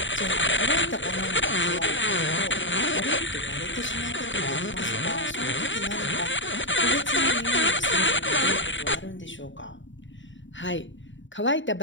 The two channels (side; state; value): right; late; 0.55 ms